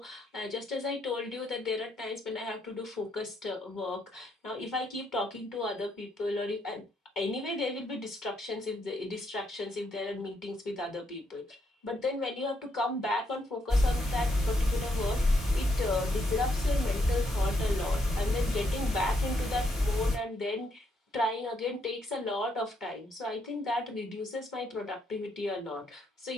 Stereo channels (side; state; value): both; normal; correlation 0.76